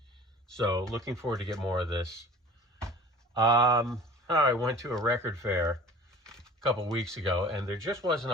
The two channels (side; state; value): both; normal; correlation 0.44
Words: So looking forward to get more of this. I went to a record fair a couple weeks ago, and there just wasn't